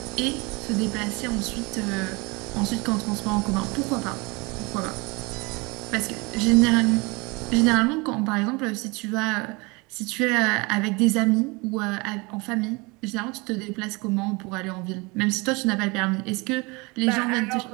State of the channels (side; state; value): left; quieter; 26.9 dB